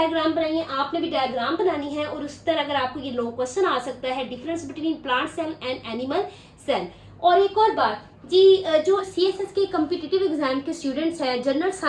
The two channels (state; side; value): identical; both; correlation 1.00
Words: बनाई है, आपने भी डायग्राम बनानी है, और उस तरह अगर आपको ये लॉन्ग क्वेश्चन आ सकता है, difference between plant cell and animal cell. और एक और बात जी, जो CSS के कम्पिटिटिव एग्जाम के स्टूडेंट्स हैं, जनरल